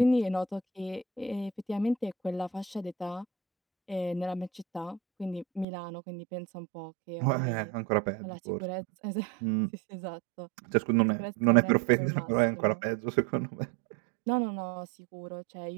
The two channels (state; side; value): drops out; left; at 5.7 s